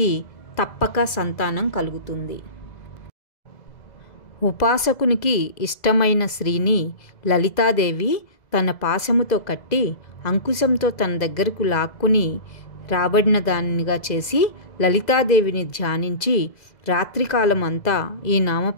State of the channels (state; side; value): late; right; 2.0 ms